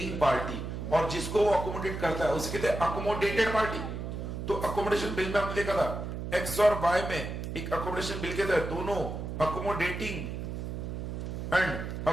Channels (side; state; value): right; noise; hum, 5 dB below the sound